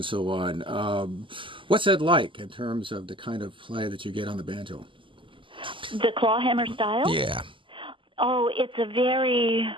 so on. What's that like in terms of the kind of play that you get on the banjo? The clawhammer style? Yeah. Oh, it's a very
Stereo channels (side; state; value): left; late; 0.25 ms